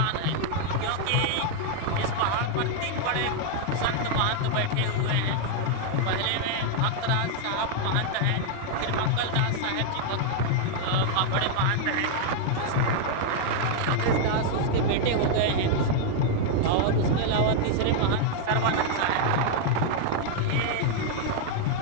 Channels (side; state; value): both; different; correlation 0.00